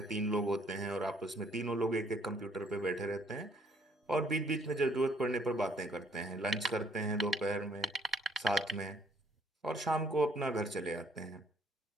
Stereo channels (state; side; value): normal; both; correlation 0.64